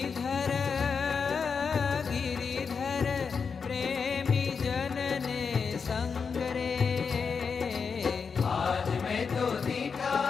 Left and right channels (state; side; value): quieter; right; 5.7 dB